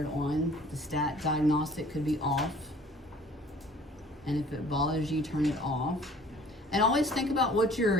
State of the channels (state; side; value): normal; both; correlation 0.51